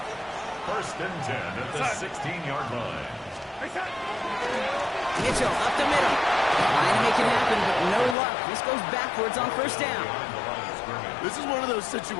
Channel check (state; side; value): drops out; right; at 8.2 s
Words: First and 10 at the 16-yard line. Mitchell up the middle. Trying to make it happen, but no luck. This goes backwards on first down. This is one of those